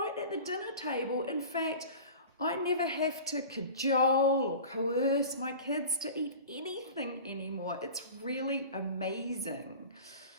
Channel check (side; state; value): both; inverted; correlation -0.37